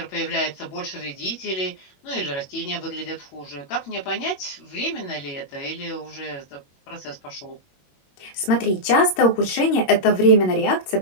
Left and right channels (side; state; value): right; late; 21 ms